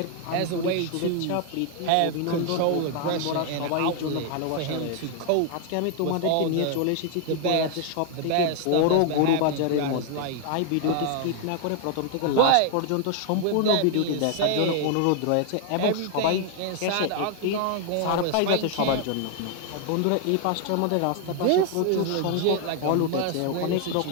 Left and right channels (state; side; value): different; both; correlation 0.00